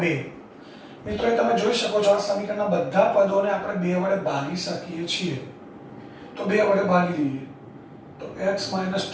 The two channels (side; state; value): both; identical; correlation 1.00